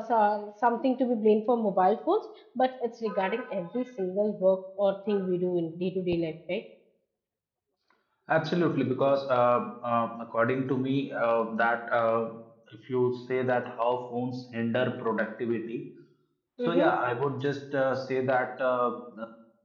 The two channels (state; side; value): identical; both; correlation 1.00